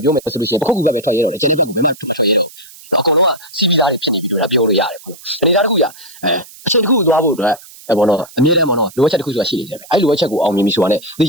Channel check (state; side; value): noise; right; hiss, 20 dB below the sound